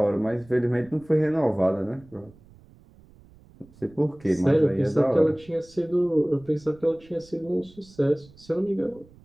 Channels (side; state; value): right; noise; rumble, 25 dB below the sound